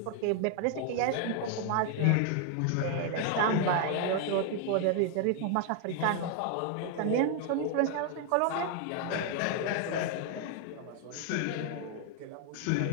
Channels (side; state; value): both; different; correlation 0.00